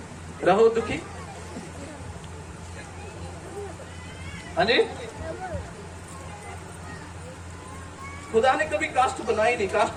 रहो दुखी। हाँ जी, खुदा ने कभी कास्ट बनाई नहीं। कास्ट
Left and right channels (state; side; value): identical; both; correlation 1.00